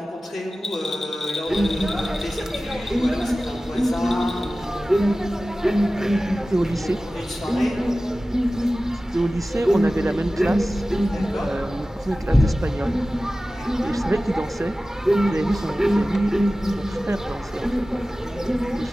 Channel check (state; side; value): normal; both; correlation 0.96